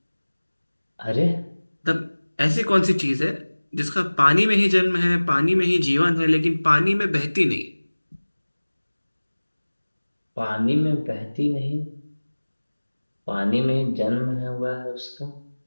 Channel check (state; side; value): inverted; both; correlation -1.00